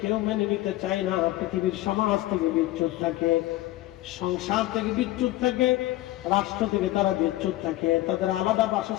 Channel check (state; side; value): quieter; right; 16.6 dB